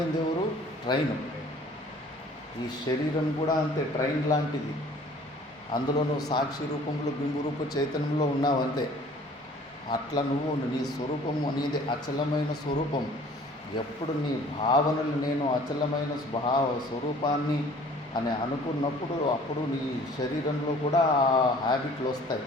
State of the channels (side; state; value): both; normal; correlation 0.51